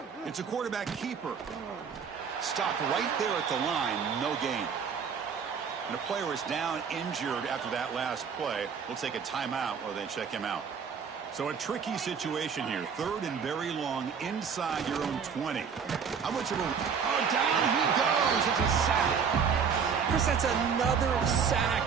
It's a quarterback keeper. Stopped right there at the line. No gain. And a player is down injured after that last play. We'll take a timeout while they check him out. So a tricky situation here. Third and very long inside your own 20. How much of a... Oh, down he goes. It's a sack. Chris, that's another sack.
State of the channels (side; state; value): left; quieter; 6.5 dB